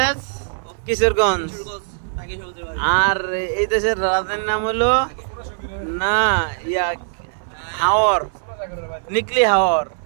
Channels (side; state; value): left; silent; 60 dB below the other